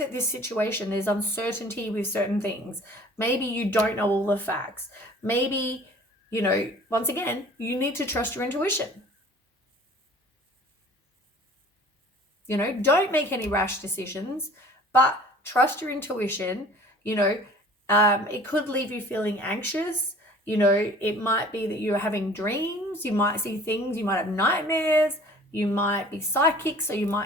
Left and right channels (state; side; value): normal; both; correlation 0.48